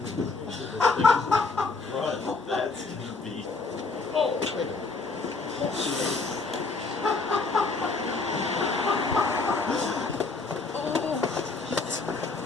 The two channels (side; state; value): right; quieter; 3.9 dB